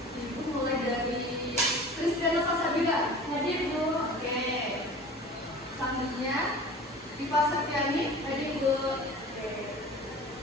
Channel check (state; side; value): normal; both; correlation 0.40